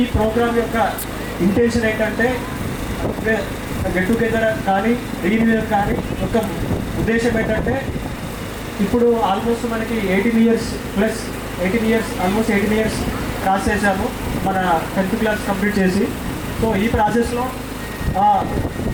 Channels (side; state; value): both; identical; correlation 1.00